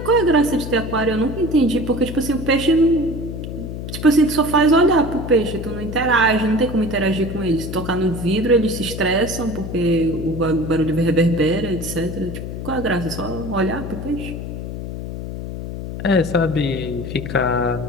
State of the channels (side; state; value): left; noise; hum, 7 dB below the sound